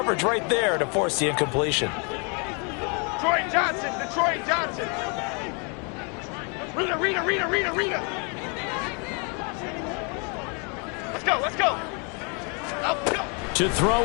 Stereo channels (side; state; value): right; quieter; 35.4 dB